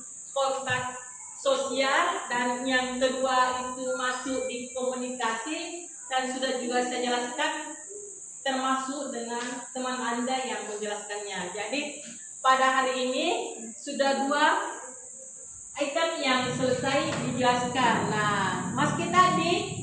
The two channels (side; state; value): both; identical; correlation 1.00